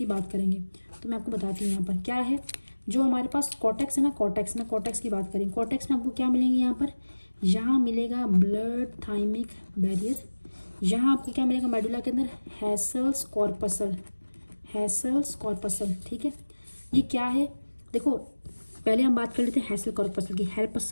बात करेंगे। तो मैं आपको बताती हूँ यहाँ पर क्या है। जो हमारे पास कॉर्टेक्स है ना, कॉर्टेक्स में, कॉर्टेक्स की बात करें, कॉर्टेक्स में आपको क्या मिलेंगे यहाँ पर, यहाँ मिलेगा ब्लड थाइमिक बैरियर, यहाँ आपको क्या मिलेगा मेडुला के अंदर, हैसल्स कॉर्पसल, हैसल्स कॉर्पसल। ठीक है, ये क्या है देखो, पहले हम बात कर लेते हैं हैसल कॉर्पसल की।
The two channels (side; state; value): both; inverted; correlation -1.00